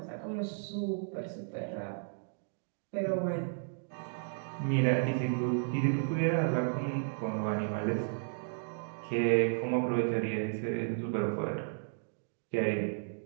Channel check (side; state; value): left; silent; digital silence